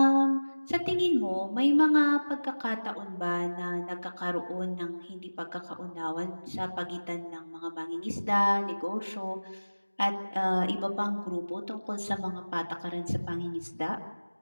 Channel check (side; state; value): both; inverted; correlation -1.00